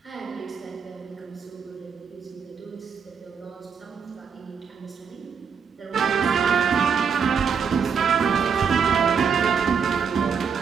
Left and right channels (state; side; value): quieter; left; 6.4 dB